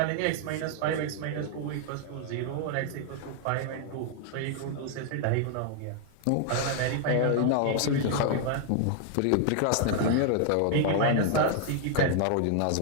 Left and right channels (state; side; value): different; both; correlation 0.00